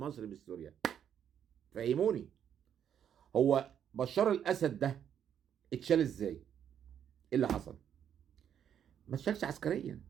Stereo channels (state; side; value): quieter; left; 9.0 dB